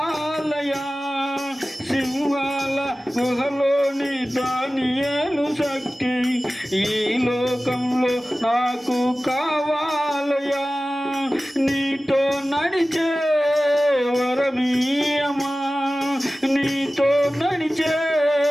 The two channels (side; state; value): both; normal; correlation 0.96